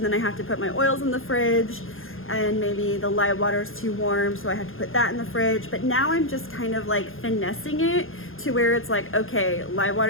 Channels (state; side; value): late; right; 0.60 ms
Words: I have to put my oils in the fridge, and maybe the lye water is too warm, so I have to put that in the fridge. But now I'm just kind of like finessing it to where it's like, okay, lye